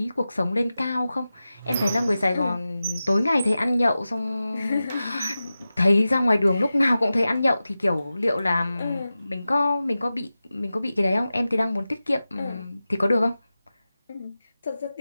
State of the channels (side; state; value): both; inverted; correlation -0.94